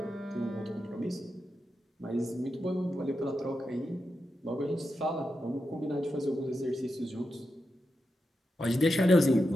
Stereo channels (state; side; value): normal; both; correlation 0.88